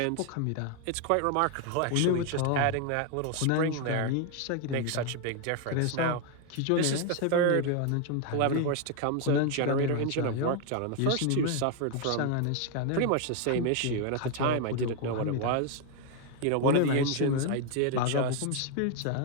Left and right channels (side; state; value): both; different; correlation 0.01